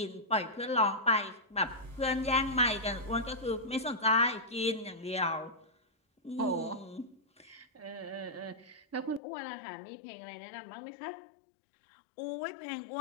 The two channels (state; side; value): drops out; right; at 9.2 s